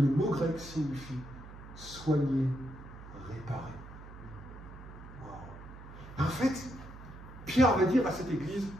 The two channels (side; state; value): right; noise; hum, 15 dB below the sound